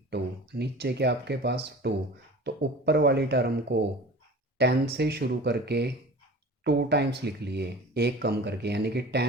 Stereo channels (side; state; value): both; normal; correlation 0.39